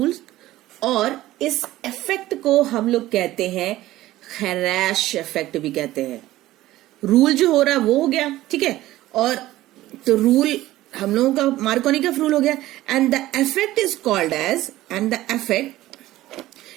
और इस इफेक्ट को हम लोग कहते हैं खैराश इफेक्ट भी कहते हैं. रूल जो हो रहा है वो हो गया, ठीक है, और तो रूल हम लोगों का मार्कोनिकफ रूल हो गया. And the effect is called as, and the effect,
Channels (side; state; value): left; quieter; 15.9 dB